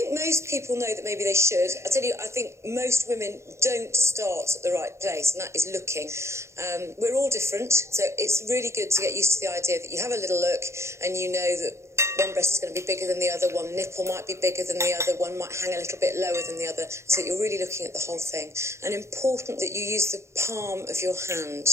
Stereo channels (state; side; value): late; left; 0.13 ms